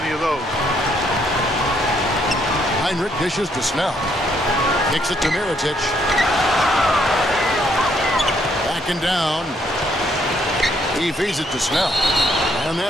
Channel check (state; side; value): normal; both; correlation 0.71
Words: of those. Heinrich dishes to Snell. Kicks it to Mirotic. Backing down. He feeds it to Snell. And